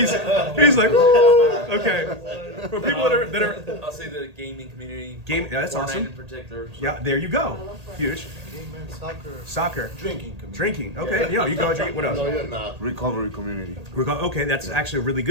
like, woo! Okay. For people that are I'll say the gaming community. Yeah, that's Fortnite awesome. in particular. So. Yeah, there you go. Huge. Game, soccer. Soccer. Drinking community. Drinking. Okay. Yeah, you go drink. What else? No, you're not. Recovery community. Okay, that's actually a really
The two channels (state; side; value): late; left; 1.8 ms